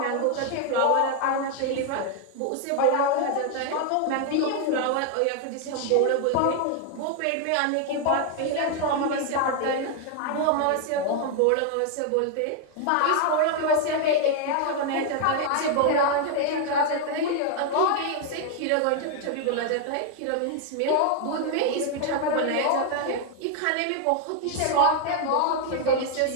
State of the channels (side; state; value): both; different; correlation 0.00